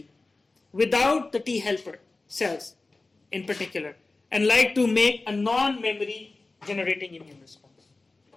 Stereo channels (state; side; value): quieter; right; 3.4 dB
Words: without the T helper cells in particular, and like to make a non-memory generating immune response.